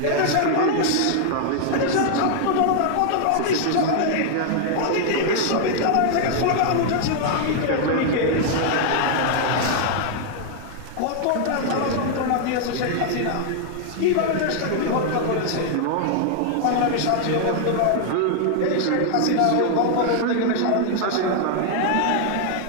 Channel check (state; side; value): different; both; correlation 0.00